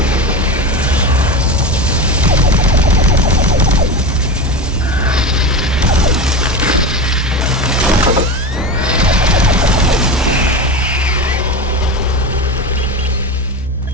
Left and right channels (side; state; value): both; normal; correlation 0.22